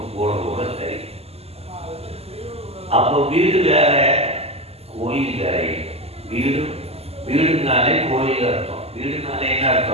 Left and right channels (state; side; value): late; left; 0.29 ms